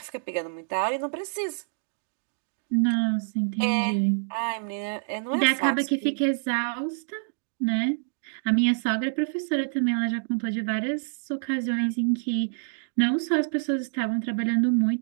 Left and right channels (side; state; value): left; silent; digital silence